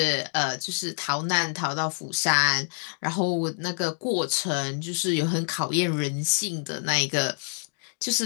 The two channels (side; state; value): right; silent; digital silence